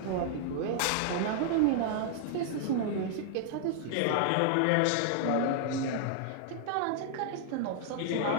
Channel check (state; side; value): different; both; correlation -0.01